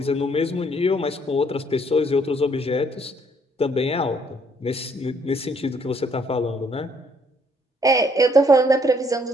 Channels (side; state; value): both; normal; correlation 0.66